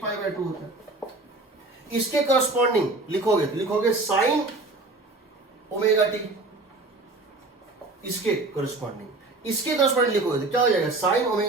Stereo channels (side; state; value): left; quieter; 3.2 dB